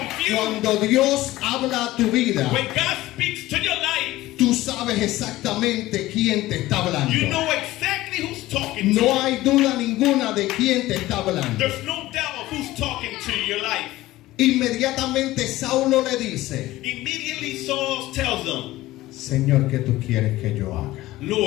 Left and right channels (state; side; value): quieter; right; 17.0 dB